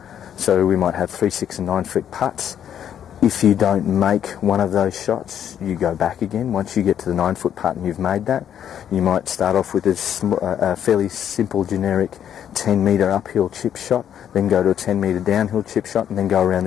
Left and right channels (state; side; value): quieter; right; 9.6 dB